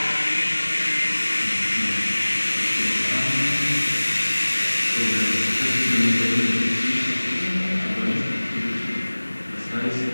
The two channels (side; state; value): both; inverted; correlation -1.00